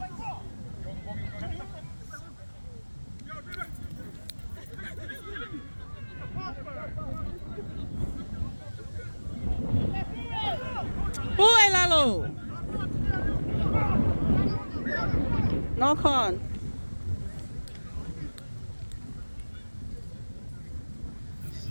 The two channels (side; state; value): both; inverted; correlation -1.00